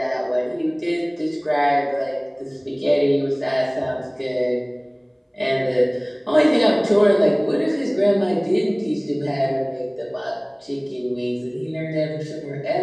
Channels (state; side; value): identical; both; correlation 1.00